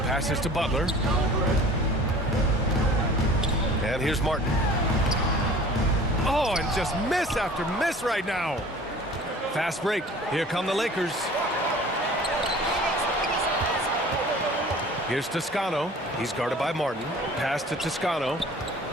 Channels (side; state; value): both; normal; correlation 0.46